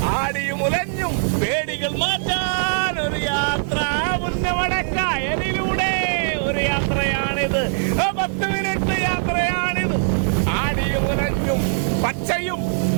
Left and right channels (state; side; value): silent; left; 65 dB below the other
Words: ആടിയുമുലഞ്ഞും പേടികൾ മാറ്റാൻ ഒരു യാത്ര. നമ്മുടെ കായലിലൂടെ ഒരു യാത്രയാണിത്, 10 മിനിറ്റ് യാത്രയാണിത്. ആടിയുമുലഞ്ഞും പച്ചയും